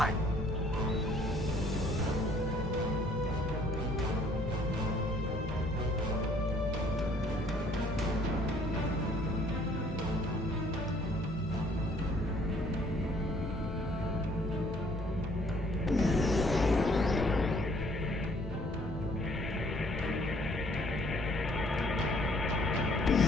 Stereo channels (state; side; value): normal; both; correlation 0.61